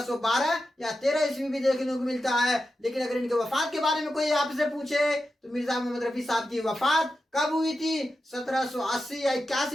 یا 13 عیسوی بھی دیکھنے کو ملتا ہے. لیکن اگر ان کے وفات کے بارے میں کوئی آپ سے پوچھے تو مرزا محمد رفیع صاحب کی وفات کب ہوئی تھی 1780 یا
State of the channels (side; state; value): both; normal; correlation 0.90